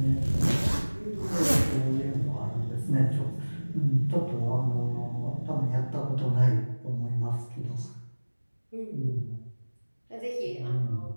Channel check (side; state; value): both; inverted; correlation -1.00